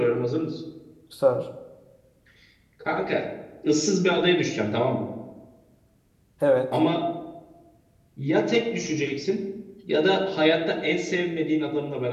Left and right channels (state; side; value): identical; both; correlation 1.00